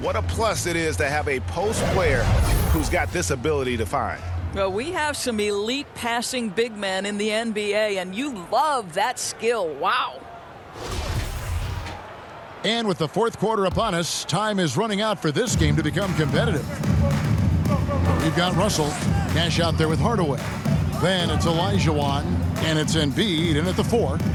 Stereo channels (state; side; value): identical; both; correlation 1.00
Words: a plus it is to have a post player who's got this ability to find. Well, we have some elite passing big men in the NBA, and you love that skill. Wow. And with the fourth quarter upon us, time is running out for this game to become competitive. We've got Russell, cash out there with Hardaway. Then it's Olajuwon, and it's Embiid in at the 4.